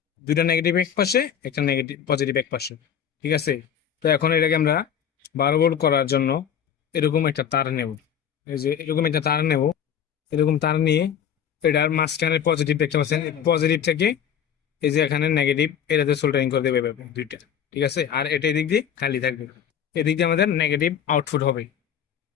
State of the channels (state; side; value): quieter; right; 8.6 dB